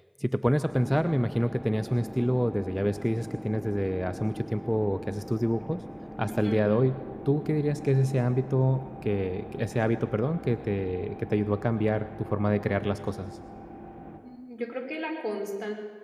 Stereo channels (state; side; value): identical; both; correlation 1.00